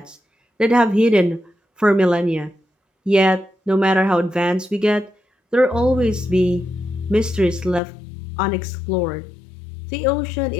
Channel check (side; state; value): right; drops out; at 7.8 s